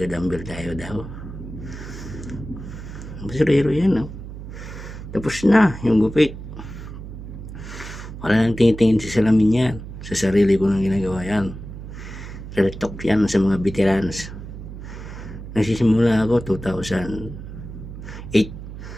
tayo daw. Basurero yan, no? Tapos na yung gupit. Wala nang tingin-tingin sa salamin yan. Sa sarili ko nang ginagawa yan. Real talk yan sa mga veterans. Nagsisimula ako 2008.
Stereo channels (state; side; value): noise; right; hum, 11 dB below the sound